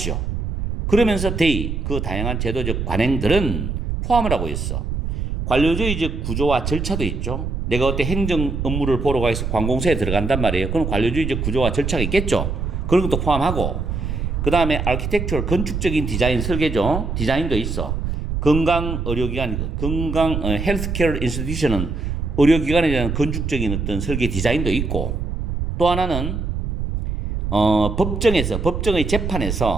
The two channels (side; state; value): right; noise; rumble, 3 dB below the sound